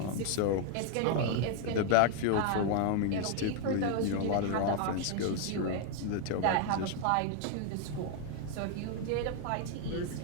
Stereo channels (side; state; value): both; different; correlation 0.00